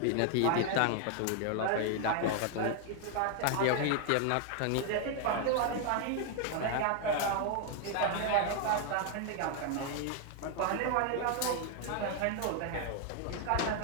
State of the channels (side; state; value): both; different; correlation 0.00